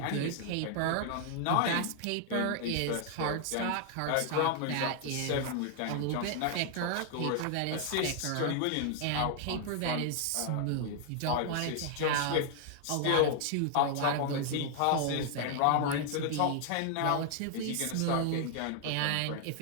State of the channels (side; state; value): both; different; correlation 0.00